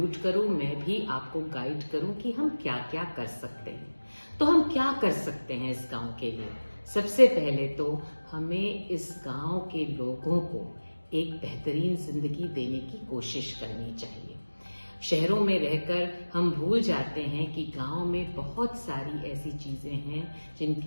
करूँ, मैं भी आपको गाइड करूँ कि हम क्या क्या कर सकते हैं। तो हम क्या कर सकते हैं इस गांव के लिए? सबसे पहले तो हमें इस गांव के लोगों को एक बेहतरीन जिंदगी देने की कोशिश करनी चाहिए। शहरों में रहकर हम भूल जाते हैं कि गांव में बहुत सारी ऐसी चीजें हैं,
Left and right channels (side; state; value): both; inverted; correlation -1.00